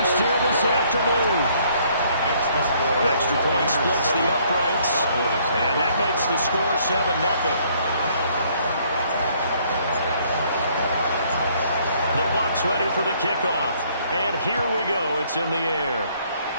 here this afternoon. Extra point splits the uprights, and that makes the score 7-0. The Bucs ready for the kickoff, and here we go. It's in the air.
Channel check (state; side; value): inverted; both; correlation -0.64